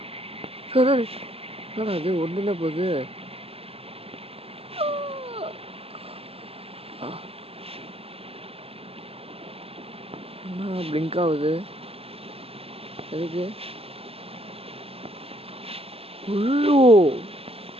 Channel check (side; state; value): left; late; 0.28 ms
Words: என்னடா அது ஒன்றுமே போகுது. என்ன பிளிங்க் ஆகுது எதுக்கு? ஐயோ